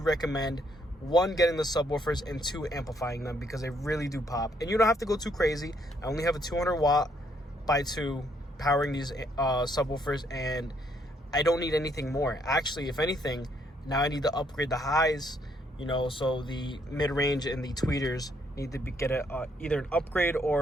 1, getting the subwoofers, and 2, amplifying them, because they really do pop. And you don't have to go too crazy. I only have a 200 watt by 2 powering these subwoofers, and I don't need anything more. Actually, if anything, now I need to upgrade the highs, so the mid-range and the tweeters need to get either an upgrade,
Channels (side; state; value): both; normal; correlation 0.70